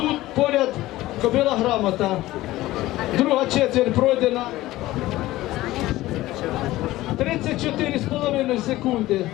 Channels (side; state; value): right; quieter; 16.9 dB